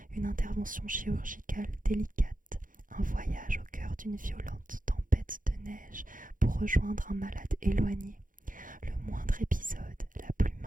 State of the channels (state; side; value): late; left; 0.39 ms